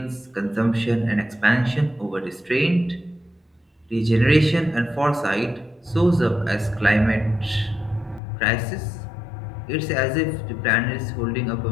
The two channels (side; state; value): right; drops out; at 8.2 s